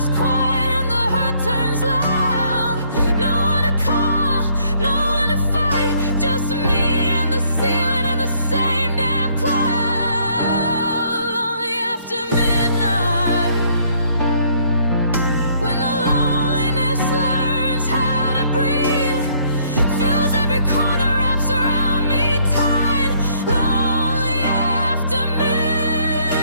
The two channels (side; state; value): both; inverted; correlation -0.64